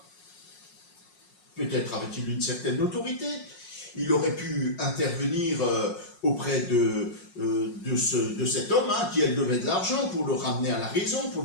Peut-être avait-il une certaine autorité. Il aurait pu intervenir auprès de cet homme qui, elle, devait de l'argent pour le ramener à la raison, pour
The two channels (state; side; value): late; right; 5.5 ms